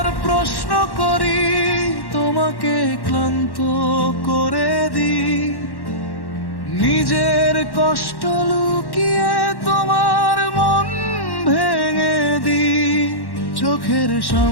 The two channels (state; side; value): late; right; 1.1 ms